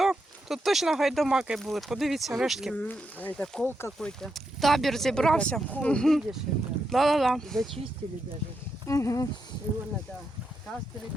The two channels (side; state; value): both; normal; correlation 0.83